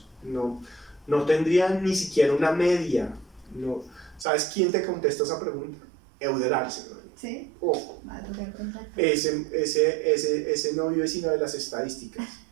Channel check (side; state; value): left; drops out; at 4.2 s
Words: No tendrían ni siquiera una media. No. ¿Sabes quién te contesta esa pregunta? Euder Arce. ¿Sí? Ese no vive sino de las estadísticas.